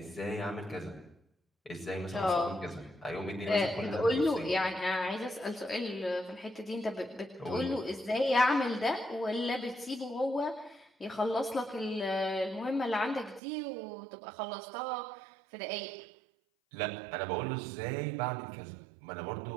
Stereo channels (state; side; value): drops out; left; at 13.4 s